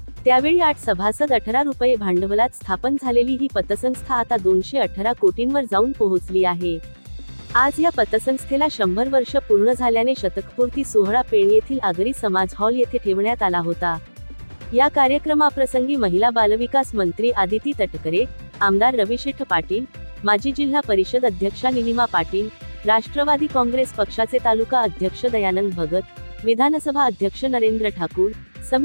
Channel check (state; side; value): inverted; both; correlation -1.00